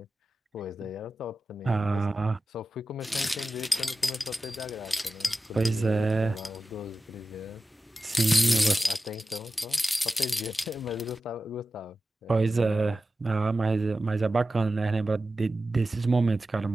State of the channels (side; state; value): both; normal; correlation 0.94